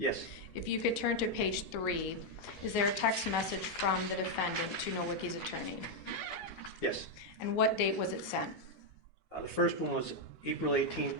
If you could turn to page 3, is there a text message from the defendant to Nowicki's attorney? Yes. And what date was it sent? The first one was April 18,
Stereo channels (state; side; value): normal; both; correlation 0.00